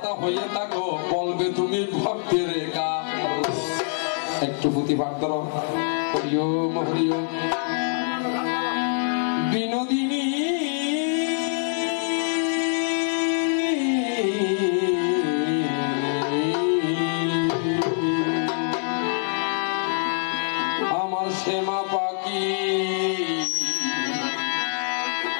হয়ে থাকো বলবে তুমি ভক্তের রেখা একটু পুঁথি পাঠ করো হরিওম হরিওম বিনোদিনী আমার শ্যামা পাখি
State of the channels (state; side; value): silent; right; 62 dB below the other